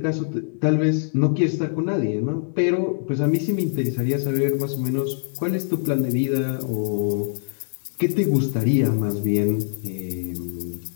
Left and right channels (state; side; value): silent; right; digital silence